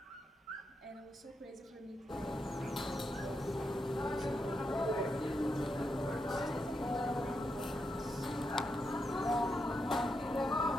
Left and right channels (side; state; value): both; normal; correlation 0.84